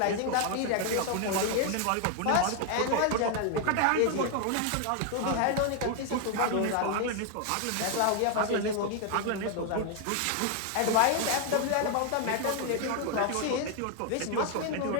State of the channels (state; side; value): different; both; correlation 0.01